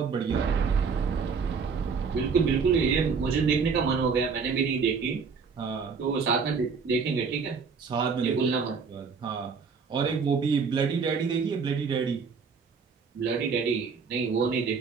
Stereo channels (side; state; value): left; quieter; 5.4 dB